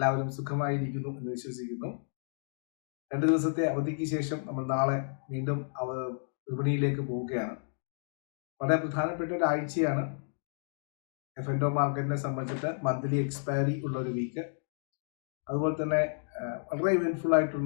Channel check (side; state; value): right; silent; digital silence